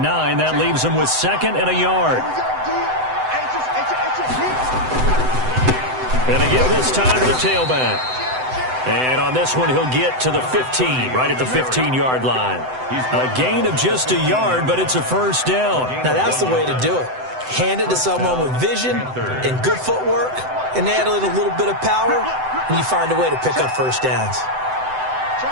9. That leaves him with 2nd and a yard. And they give this time to the tailback. And on this one, he'll get to the 15, right at the 15-yard line. A gain of just a yard, but it's a first down. Now, that's the way to do it. Hand it to someone with vision and good footwork, and add in a little bit of power, and you find a way to pick up first downs.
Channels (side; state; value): left; late; 7.9 ms